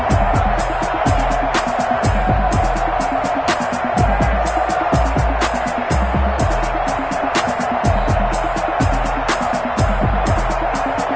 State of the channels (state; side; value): identical; both; correlation 1.00